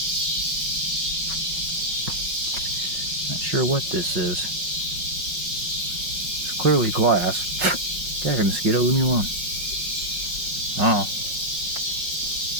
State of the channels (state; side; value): late; left; 5.5 ms